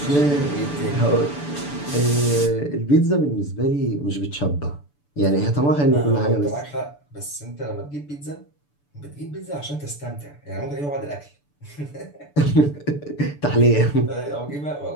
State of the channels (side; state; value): right; late; 6.9 ms